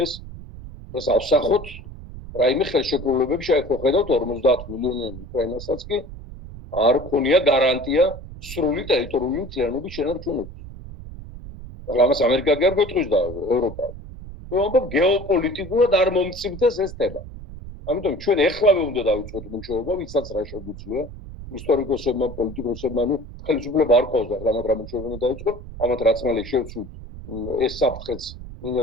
ეს ავსახოთ რაიმე ხელშეკრულებები შეიძლება ხედავთ 50 მილიონიანი უკრაინასაც კი არ ქონია გარანტია სრული ტერიტორიული მთლიანობის შენარჩუნების. ახლა ამას ამერიკა კი არ გვეტყვის და ევროპა. ამბობ გეოპოლიტიკურად არ მომწიფდეს ეს თემა. ამიტომ ჩვენ ეხლავე უნდა დავიწყოთ მუშაობა, ვისაც რა შეგვიძლია, ისტორიკოსებმა, პოლიტიკოსებმა, ხელისუფლება არ ყავს ახლა მათ რა მუშაობა უნდა დაიწყოთ, ამათ რაც მალე შევცვლით ეს საფრთხეც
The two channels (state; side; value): noise; right; rumble, 13 dB below the sound